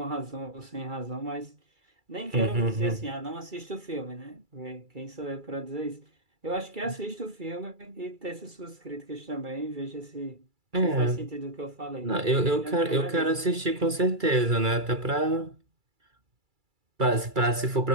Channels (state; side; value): late; left; 2.3 ms